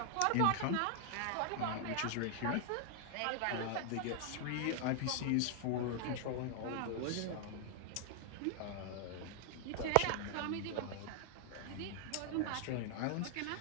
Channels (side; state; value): both; different; correlation 0.00